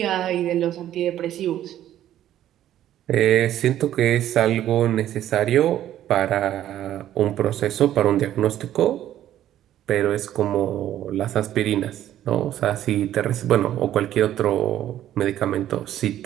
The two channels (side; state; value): left; quieter; 12.1 dB